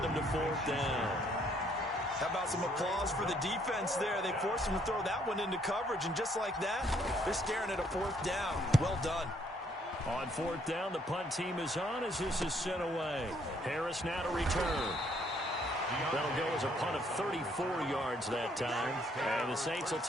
them to 4th down. How about some applause for the defense there? They forced them to throw that one into coverage, and just like that, they're staring at a 4th down. Well done. On 4th down, the punt team is on as this is sent away. Harris now to return. That'll go as a punt of 34 yards that time. And the Saints will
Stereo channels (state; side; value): normal; both; correlation 0.67